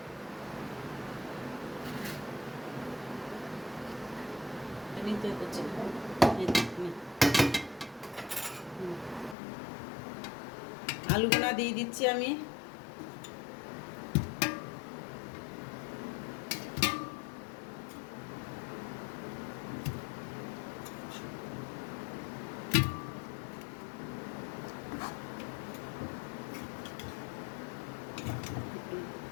আলু গোনা দিয়ে দিচ্ছি আমি।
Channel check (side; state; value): right; drops out; at 9.3 s